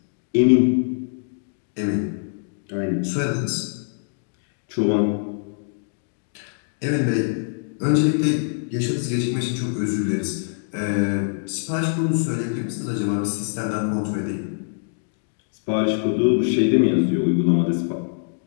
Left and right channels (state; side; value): silent; right; digital silence